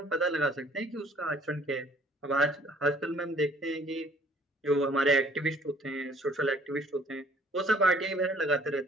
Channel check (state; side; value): normal; both; correlation 0.58